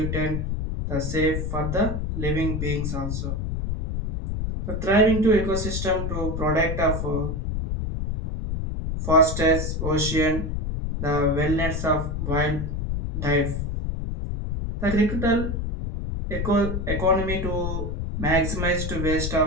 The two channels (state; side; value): noise; left; rumble, 2 dB below the sound